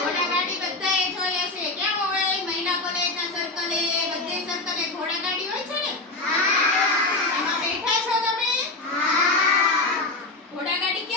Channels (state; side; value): quieter; right; 3.2 dB